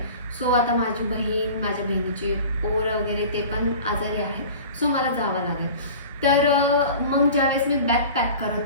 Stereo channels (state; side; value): inverted; both; correlation -0.39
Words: सो आता माझी बहीण, माझ्या बहिणीची पोरं वगैरे ते पण आजारी आहे, सो मला जावं लागेल. तर मग ज्यावेळेस मी बॅग पॅक